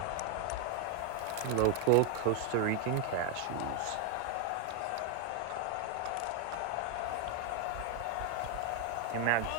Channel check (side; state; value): both; different; correlation 0.01